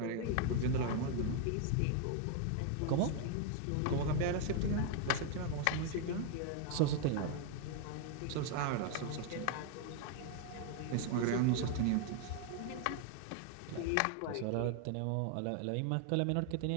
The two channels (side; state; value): both; different; correlation 0.00